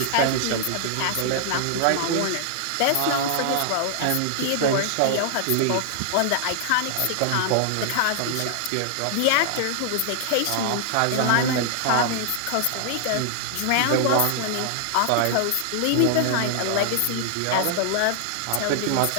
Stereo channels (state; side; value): different; both; correlation 0.00